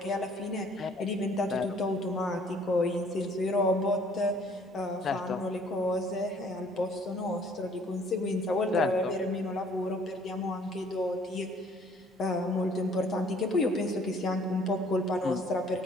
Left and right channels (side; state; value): both; normal; correlation 0.58